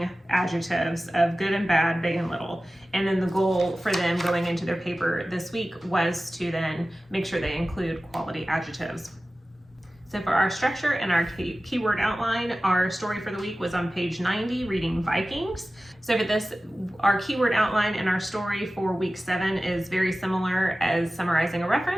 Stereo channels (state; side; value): normal; both; correlation 0.96